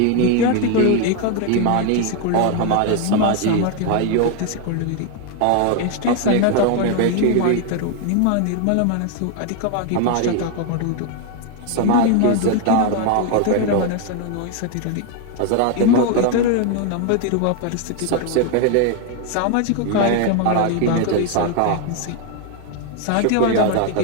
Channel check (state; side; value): different; both; correlation 0.01